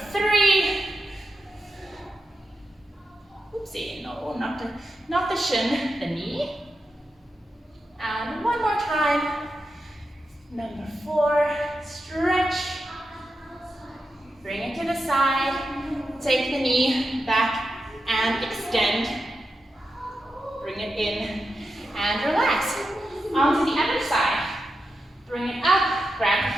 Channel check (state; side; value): normal; both; correlation 0.88